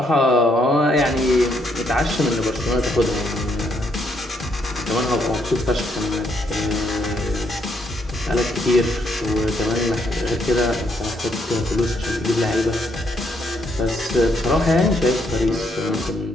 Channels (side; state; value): both; normal; correlation 0.73